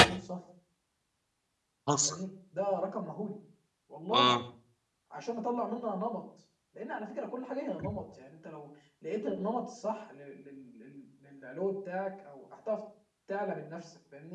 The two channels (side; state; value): both; identical; correlation 1.00